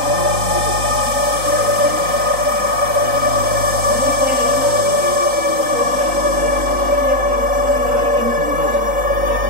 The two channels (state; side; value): late; left; 3.9 ms